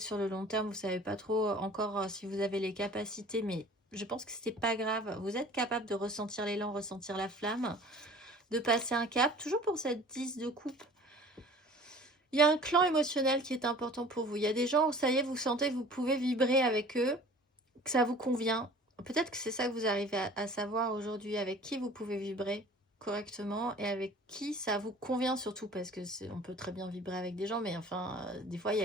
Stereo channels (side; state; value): both; normal; correlation 0.46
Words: sur le long terme, vous savez pas trop encore si vous avez les capacités, mais je pense que c'est pas grave, vous êtes capable de ressentir l'élan, ressentir la flamme, de passer un cap, toujours pour cette 10 de coupe. Il y a un clan émotionnel qui est important pour vous, il y a des gens, ça y est, vous sentez que vous pouvez vibrer avec eux, que ça vous convient. Peut-être que c'est ça que vous arrivez à savoir aujourd'hui, avec qui vous pouvez vibrer correctement et avec qui ça vous convient surtout, parce que on peut très bien vibrer avec des gens, mais enfin, des fois, il